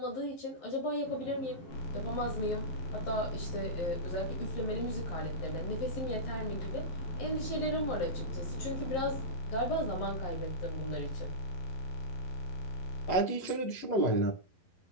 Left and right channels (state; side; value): late; right; 11 ms